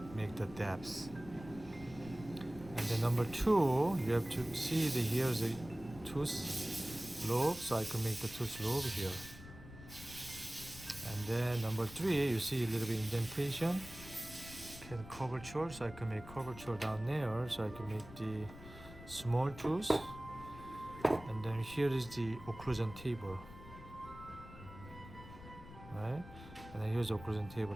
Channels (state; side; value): noise; left; rumble, 15 dB below the sound